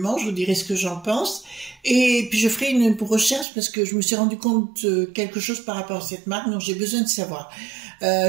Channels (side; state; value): left; drops out; at 3.5 s